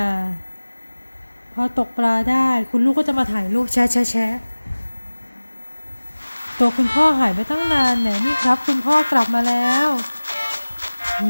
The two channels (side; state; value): both; inverted; correlation -1.00